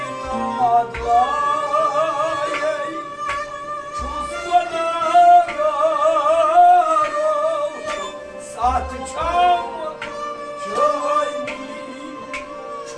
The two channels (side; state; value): both; identical; correlation 1.00